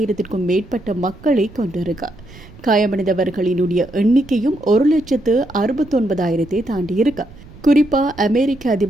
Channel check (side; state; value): right; noise; rumble, 20 dB below the sound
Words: மேற்பட்ட மக்களை கொண்டிருக்க, காயமடைந்தவர்களினுடைய எண்ணிக்கையும் 1,69,000 தாண்டியிருக்க. குறிப்பா அமெரிக்க